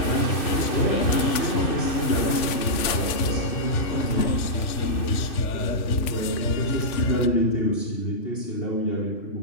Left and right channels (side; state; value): right; late; 3.4 ms